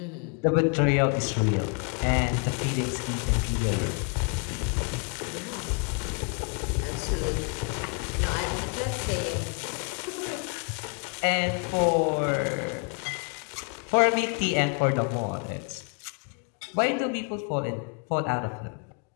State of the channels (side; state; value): right; quieter; 35.2 dB